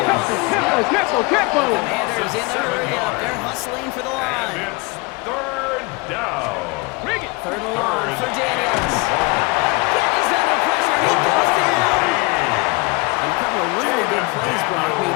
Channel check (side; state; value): right; quieter; 26.7 dB